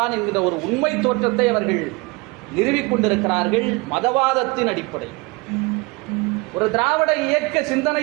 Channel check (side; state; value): left; quieter; 26.3 dB